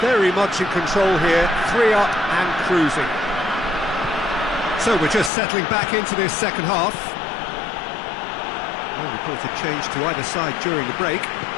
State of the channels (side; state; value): right; drops out; at 5.3 s